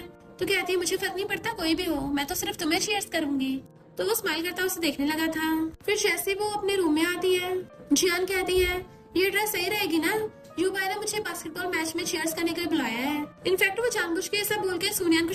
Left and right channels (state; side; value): identical; both; correlation 1.00